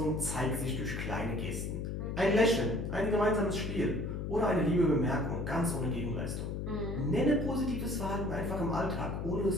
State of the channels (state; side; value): noise; left; hum, 3 dB below the sound